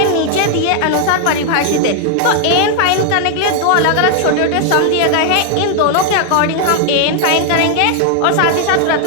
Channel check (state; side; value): different; both; correlation 0.00